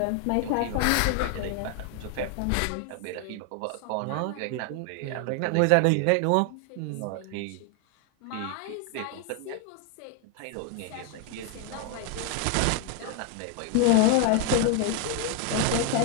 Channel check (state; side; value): different; both; correlation 0.00